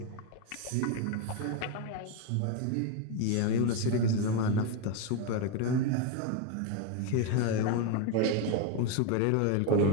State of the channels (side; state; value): both; different; correlation 0.02